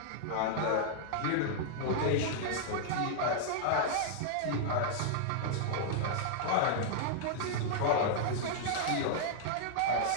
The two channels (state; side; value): different; both; correlation -0.01